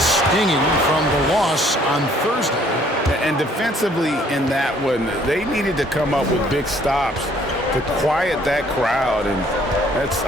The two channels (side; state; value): both; normal; correlation 0.61